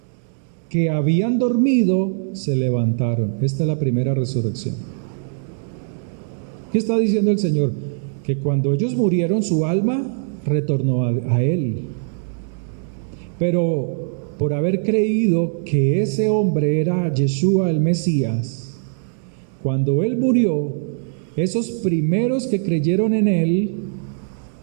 que habían dormido se levantaron. Esta es la primera resurrección. ¿Qué está diciendo el Señor? Que cuando ellos murieron, su alma retornó a Él. Pero por haber creído que ese hombre era Yeshua el Mesías, cuando Él murió, esos primeros que creyeron en Él,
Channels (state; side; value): silent; left; digital silence